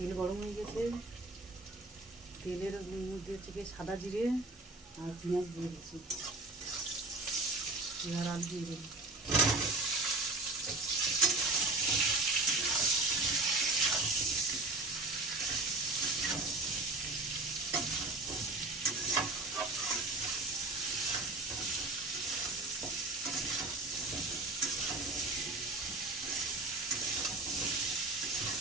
গরম হয়ে গেছে, তেলের মধ্যে থেকে সাদা জিরে আর পেঁয়াজ দিয়ে দিচ্ছি, আর আলু দিয়ে দেবো।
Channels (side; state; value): left; quieter; 3.0 dB